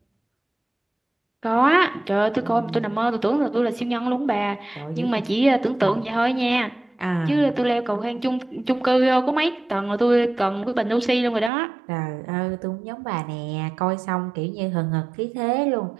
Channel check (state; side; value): drops out; left; at 11.5 s